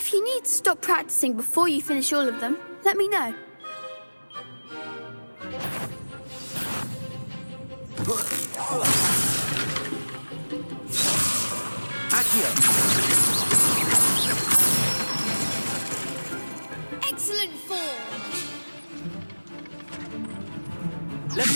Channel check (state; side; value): inverted; both; correlation -1.00